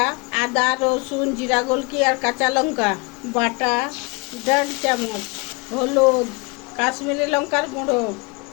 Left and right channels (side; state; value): right; quieter; 28.0 dB